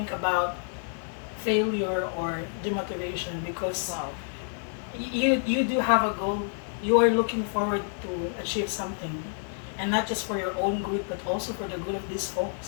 about failure or demotivation because Wow. you do have a goal. You are looking forward to achieve something, and not just for your own good, but also for the good of these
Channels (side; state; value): right; silent; 59 dB below the other